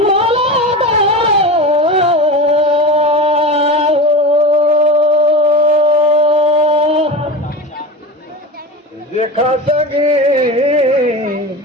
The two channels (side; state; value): both; normal; correlation 0.28